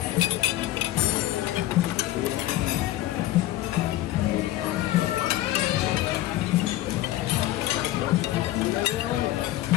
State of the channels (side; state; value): right; quieter; 15.3 dB